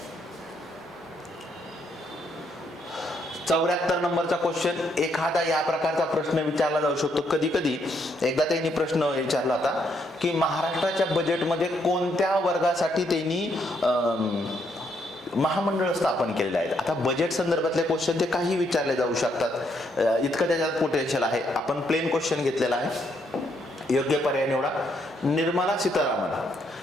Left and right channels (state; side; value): normal; both; correlation 0.74